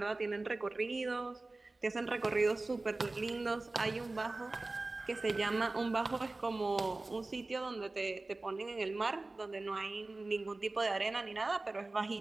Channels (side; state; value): left; quieter; 3.1 dB